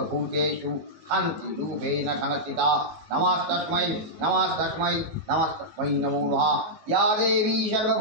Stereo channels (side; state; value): left; late; 19 ms